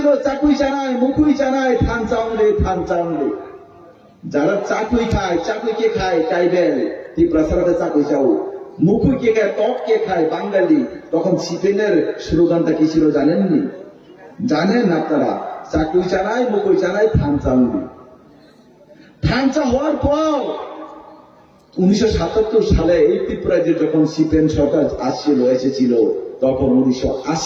চাকুই চানায় মুখুই চানায় থান চাউলে থান চাউলে। যারা চাকুই খায়, চাকুই কে খায় ট্রাইবেল ত্রিপুরা সারাতে চাকুই চাও, মুখুই কে খায় টক কে খায় বাঙালি। তখন সিপিএমের স্লোগানটা কি ছিল জানেননি? জানেন আপনারা? চাকুই চানায় মুখুই চানায় থান চাউলে। থানচা হওয়ার পর 1977 সালে এই ত্রিপুরায় যখন সিপিএম সরকার এসেছিল, তখন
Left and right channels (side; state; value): both; identical; correlation 1.00